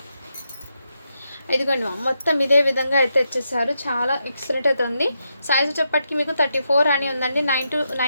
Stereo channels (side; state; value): both; inverted; correlation -0.83